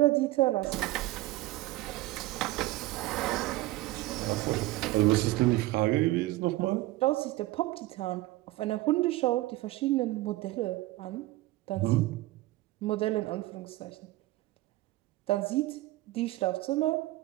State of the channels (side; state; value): left; quieter; 18.2 dB